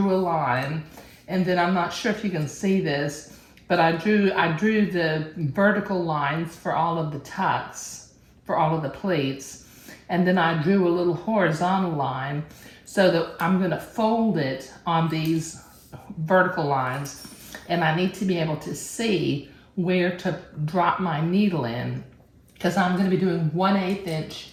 a line, and then I'm not sure if you can see this, but I drew the vertical lines for all of the tucks, for all of the pleats, and then I drew a little horizontal line so that I'm gonna fold it on these vertical lines, and I need to be able to see where to drop my needle in, because I'm gonna be doing 1/8 inch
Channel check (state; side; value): identical; both; correlation 1.00